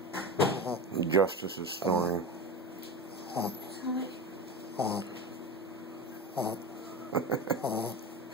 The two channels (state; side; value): normal; both; correlation 0.25